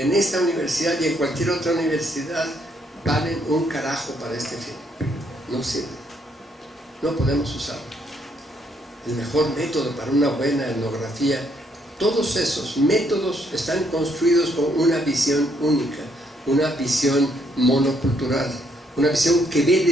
esta universidad y en cualquier otra universidad valen un carajo para este fin. No sirve, no podemos usarlo. El mejor método para una buena etnografía, todos esos métodos están construidos con una visión única, una visión monocultural, una visión que ve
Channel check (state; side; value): normal; both; correlation 0.71